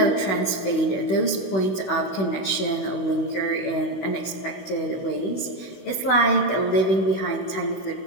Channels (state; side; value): late; right; 16 ms